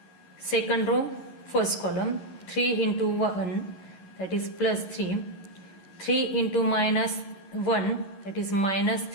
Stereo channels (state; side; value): late; right; 11 ms